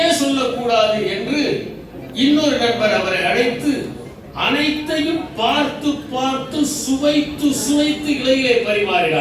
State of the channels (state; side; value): identical; both; correlation 1.00